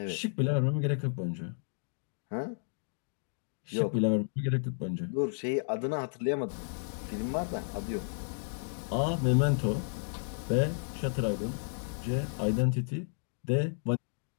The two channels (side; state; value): right; silent; digital silence